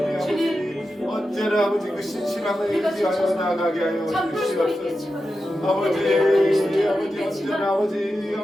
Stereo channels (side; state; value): both; normal; correlation 0.90